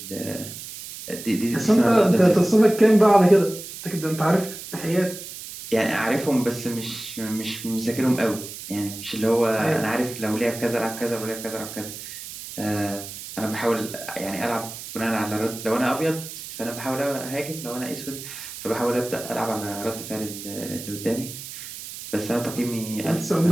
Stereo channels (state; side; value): noise; right; hiss, 11 dB below the sound